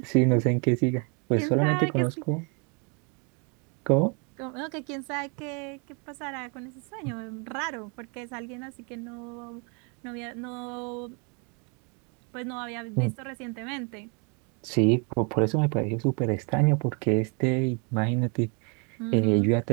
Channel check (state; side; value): quieter; left; 35.0 dB